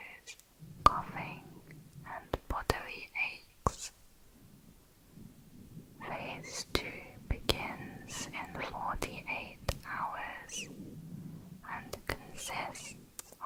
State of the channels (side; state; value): both; identical; correlation 1.00